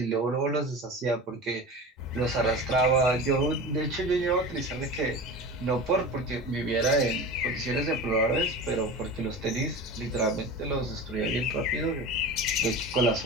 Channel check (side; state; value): both; normal; correlation 0.32